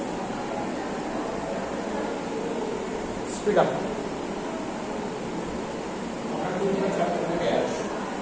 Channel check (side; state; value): both; identical; correlation 1.00